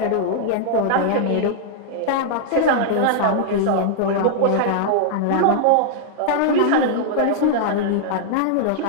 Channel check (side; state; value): both; different; correlation -0.01